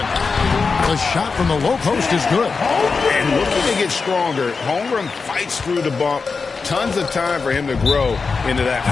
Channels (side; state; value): right; quieter; 4.7 dB